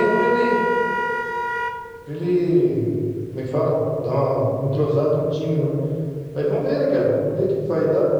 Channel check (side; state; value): both; identical; correlation 1.00